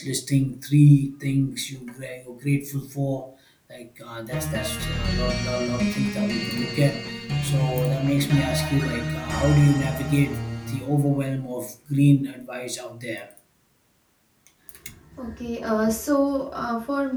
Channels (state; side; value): identical; both; correlation 1.00